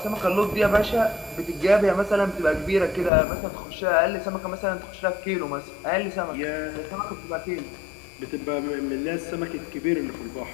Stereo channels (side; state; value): right; drops out; at 3.1 s